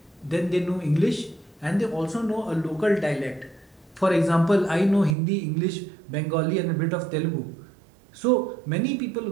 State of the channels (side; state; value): left; drops out; at 5.2 s